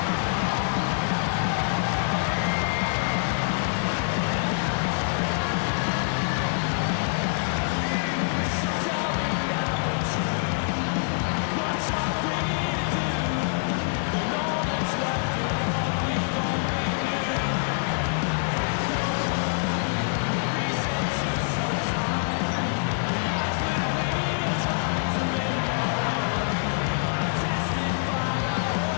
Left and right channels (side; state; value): right; silent; digital silence